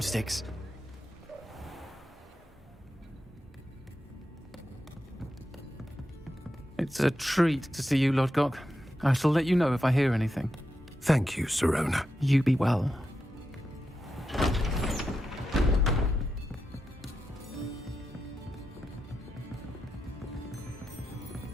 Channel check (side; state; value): both; normal; correlation 0.87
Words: It's a treat to see you, Lodgok. I shall let you know if I hear anything. Thank you, Sirona. You be well.